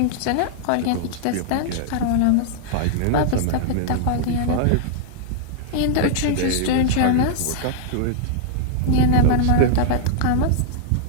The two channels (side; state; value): both; different; correlation -0.01